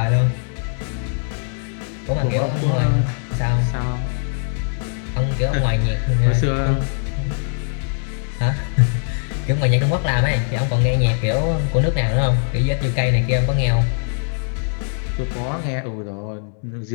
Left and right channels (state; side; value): silent; right; 61 dB below the other